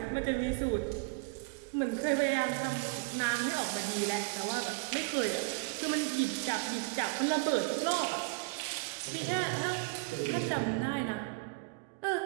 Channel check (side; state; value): left; quieter; 29.2 dB